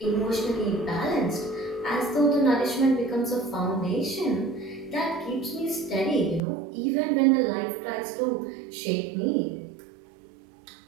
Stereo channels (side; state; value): left; drops out; at 6.4 s